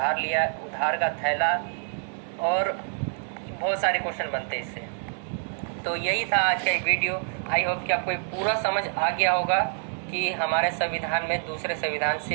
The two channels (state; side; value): silent; left; 60 dB below the other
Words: का थैला, और बहुत सारे क्वेश्चन बनते हैं इससे। तो यही था आज का एक वीडियो। आई होप कि आपको पूरा समझ आ गया होगा कि हमारे संविधान में दूसरे संविधान